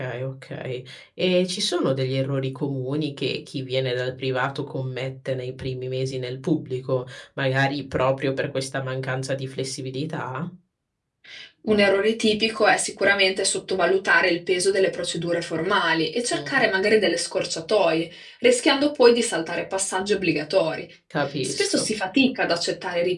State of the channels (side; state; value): both; identical; correlation 1.00